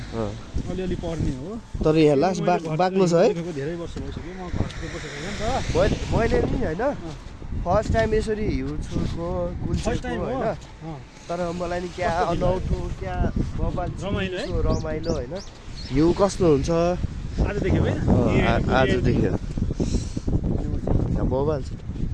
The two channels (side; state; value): both; identical; correlation 1.00